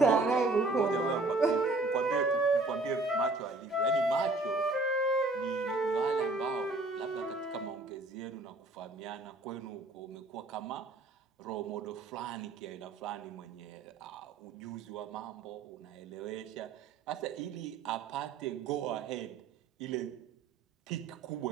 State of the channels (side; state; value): left; quieter; 3.2 dB